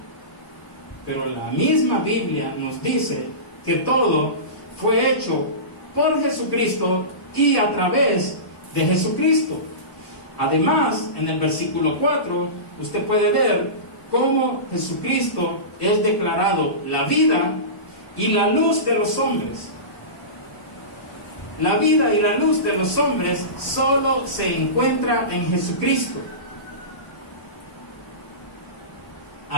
pero la misma Biblia nos dice que todo fue hecho por Jesucristo y a través de Jesucristo. Además, en el versículo 4, usted puede ver cómo Jesucristo es declarado la vida y la luz de los hombres. La vida y la luz de los hombres solo se encuentra en Jesucristo.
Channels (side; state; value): right; late; 1.0 ms